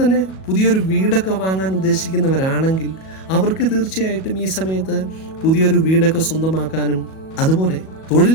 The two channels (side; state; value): right; late; 37 ms